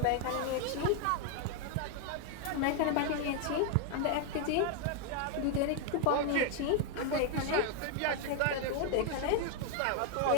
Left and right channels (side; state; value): both; different; correlation 0.00